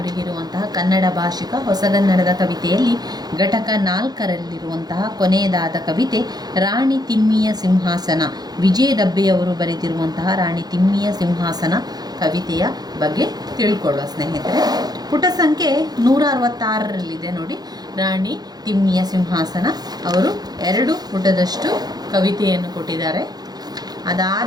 ಕನ್ನಡ ಭಾಷಿಕ ಹೊಸಗನ್ನಡದ ಕವಿತೆಯಲ್ಲಿ ಘಟಕ 4ರಲ್ಲಿರುವಂತಹ ಕೊನೆಯದಾದ ಕವಿತೆ ರಾಣಿ ತಿಮ್ಮಿಯ ಸಿಂಹಾಸನ, ವಿಜಯ ದಬ್ಬೆಯವರು ಬರೆದಿರುವಂತಹ ರಾಣಿ ತಿಮ್ಮಿಯ ಸಿಂಹಾಸನ ಕವಿತೆಯ ಬಗ್ಗೆ ತಿಳ್ಕೊಳ್ಳುವ ಸ್ನೇಹಿತರೆ. ಪುಟ ಸಂಖ್ಯೆ 166ರಲ್ಲಿದೆ ನೋಡಿ. ರಾಣಿ ತಿಮ್ಮಿಯ ಸಿಂಹಾಸನ ಅವರು 2 ಪುಟದಷ್ಟು ಕವಿತೆಯನ್ನು ಕೊಟ್ಟಿದ್ದಾರೆ.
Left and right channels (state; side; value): late; left; 0.19 ms